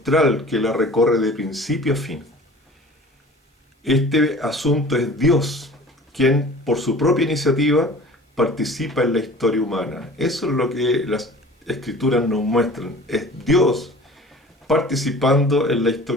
que la recorre de principio a fin. Este asunto es Dios, quien por su propia iniciativa participa en la historia humana. Eso es lo que las Escrituras nos muestran. Es Dios participando en la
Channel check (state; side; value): normal; both; correlation 0.44